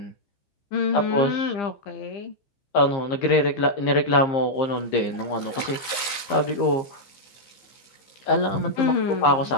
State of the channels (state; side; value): late; right; 15 ms